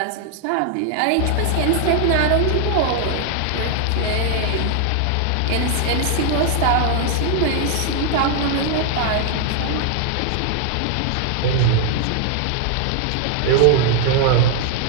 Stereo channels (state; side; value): different; both; correlation 0.00